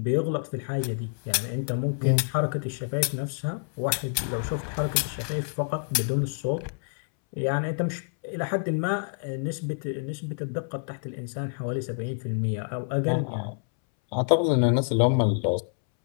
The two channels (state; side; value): silent; right; 60 dB below the other